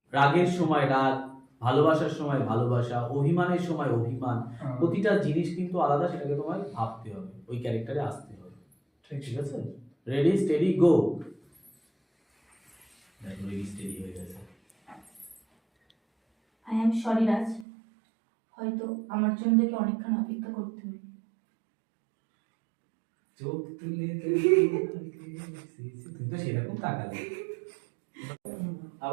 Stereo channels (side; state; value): left; drops out; at 17.7 s